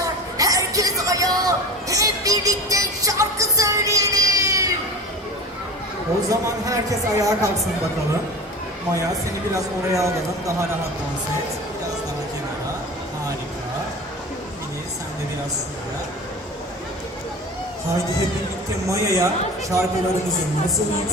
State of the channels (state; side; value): normal; both; correlation 0.33